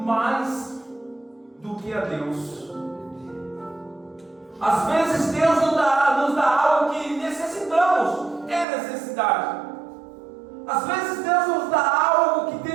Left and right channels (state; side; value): drops out; left; at 8.7 s